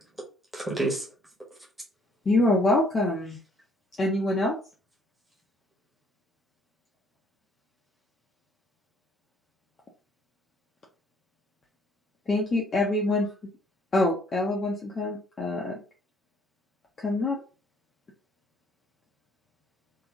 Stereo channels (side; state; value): both; normal; correlation 0.63